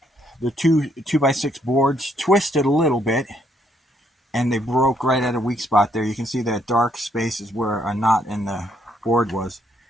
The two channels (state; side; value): normal; both; correlation 0.71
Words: The 2x6 boards twisted a little bit, and they broke right at a weak spot there. You can see that dark space is where a knot in the board was.